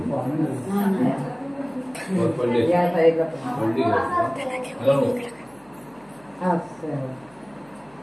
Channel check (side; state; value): right; noise; hum, 30 dB below the sound